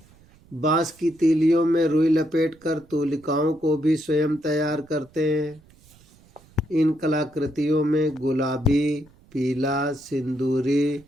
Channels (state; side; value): noise; right; rumble, 28 dB below the sound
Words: बांस की तीलियों में रुई लपेटकर तूलिकाओं को भी स्वयं तैयार करते हैं। इन कलाकृतियों में गुलाबी, पीला, सिंदूरी,